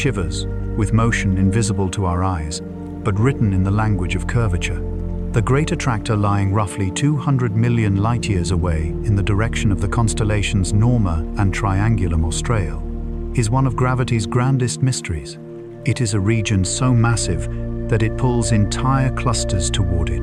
with motion invisible to our eyes, but written in the language of curvature. The Great Attractor, lying roughly 200 million light-years away in the direction of the constellations Norma and Triangulum Australe, is one of gravity's grandest mysteries. It is a region so massive that it pulls entire clusters toward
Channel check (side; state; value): both; identical; correlation 1.00